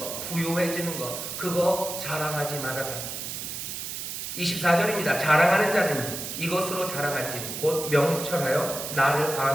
부유해지는 거, 그거 자랑하지 말아라. 24절입니다. 자랑하는 자는 이것으로 자랑하지, 곧 명철하여 나를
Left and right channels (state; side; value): noise; right; hiss, 6 dB below the sound